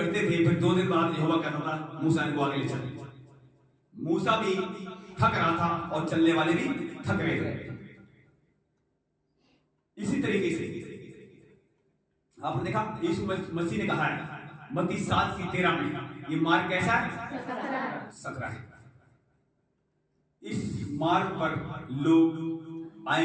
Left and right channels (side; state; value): both; identical; correlation 1.00